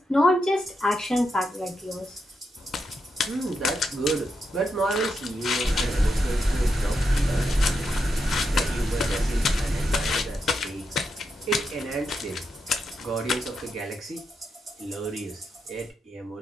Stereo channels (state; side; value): normal; both; correlation 0.84